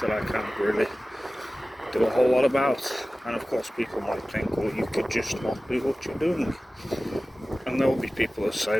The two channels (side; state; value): both; normal; correlation 0.97